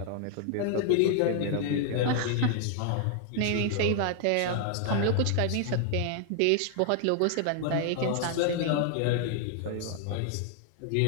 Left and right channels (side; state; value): both; different; correlation 0.00